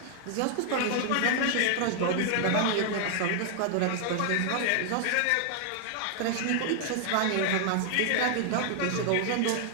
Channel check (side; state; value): both; different; correlation 0.00